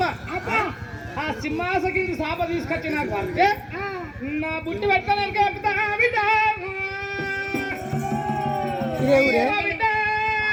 ఆ సింహాసకి సాప తీసుకొచ్చి నాకు పడితే నా బుట్టి పెట్టుకోలేక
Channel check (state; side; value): identical; both; correlation 1.00